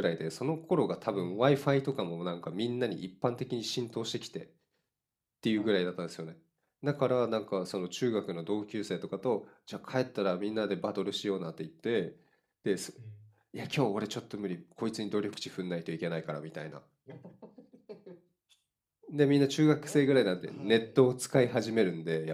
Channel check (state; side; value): identical; both; correlation 1.00